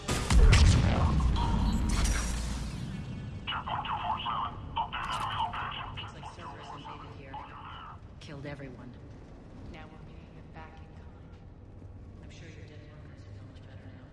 Checkpoint 247. Update enemy location. Looks like Cerberus invaded here. Killed everyone. Now we're meeting them back in kind. I'm sure your dead workers feel much better now.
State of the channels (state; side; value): identical; both; correlation 1.00